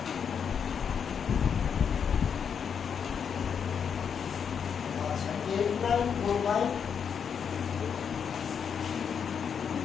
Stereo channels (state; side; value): quieter; right; 7.1 dB